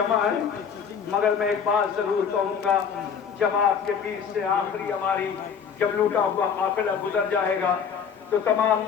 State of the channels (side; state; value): right; quieter; 6.9 dB